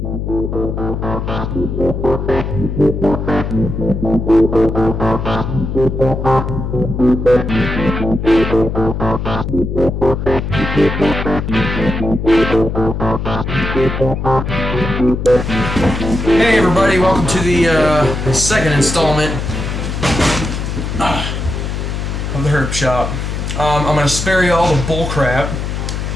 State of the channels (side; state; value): left; noise; hum, 4 dB below the sound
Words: everybody, welcome to the second installment of the Herpshop. I'm going to spare you all the bull crap